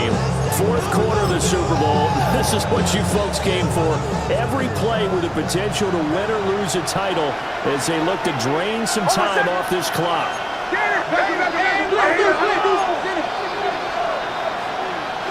4th quarter of the Super Bowl. This is what you folks came for. Every play with the potential to win or lose a title as they look to drain some time off this clock.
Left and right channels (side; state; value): both; identical; correlation 1.00